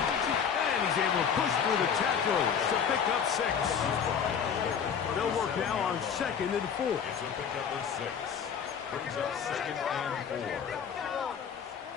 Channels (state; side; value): quieter; right; 7.3 dB